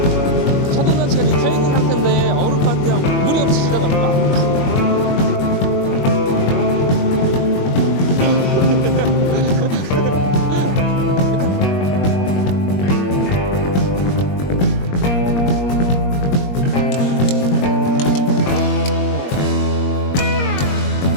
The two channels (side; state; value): right; late; 21 ms